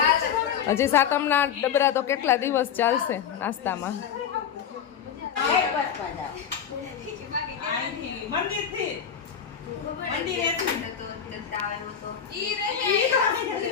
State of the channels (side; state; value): right; quieter; 8.1 dB